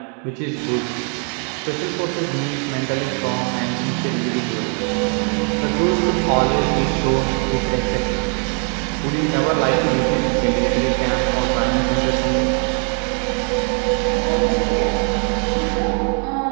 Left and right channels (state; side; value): quieter; left; 37.5 dB